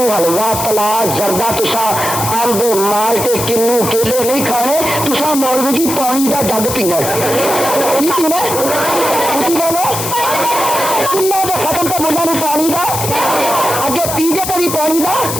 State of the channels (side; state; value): left; noise; hiss, 4 dB below the sound